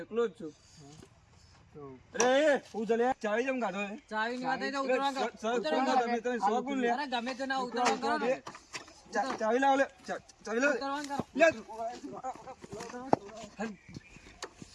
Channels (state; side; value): identical; both; correlation 1.00